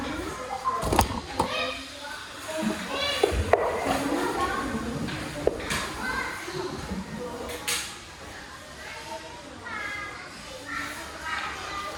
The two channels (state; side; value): identical; both; correlation 1.00